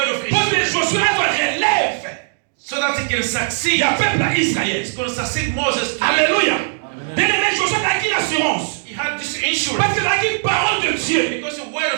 of pour que assurance, Josué relève. so that he can Il succeed. y a peuple à Israël. He's going to succeed Moses. Alléluia. Bien aimé, Josué a acquis l'assurance. He had this insurance Parce qu'il a acquis parole de Dieu. because the word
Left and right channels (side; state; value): left; silent; digital silence